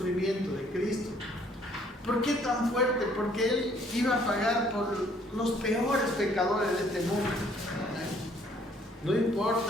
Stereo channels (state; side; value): normal; both; correlation 0.62